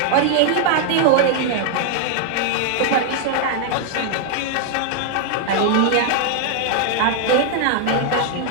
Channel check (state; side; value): different; both; correlation 0.00